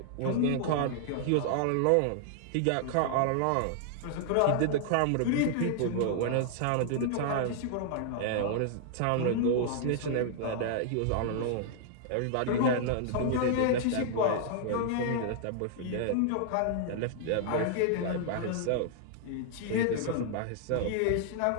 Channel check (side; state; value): both; different; correlation -0.01